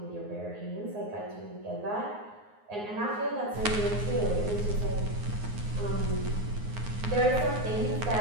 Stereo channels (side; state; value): left; late; 9.6 ms